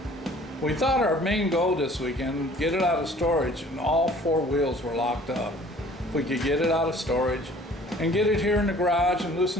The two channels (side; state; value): both; normal; correlation 0.52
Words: We thought our main goal this weekend, get it out of storage, and all four wheels were locked up. If we could get it out of storage and get it here in the garage and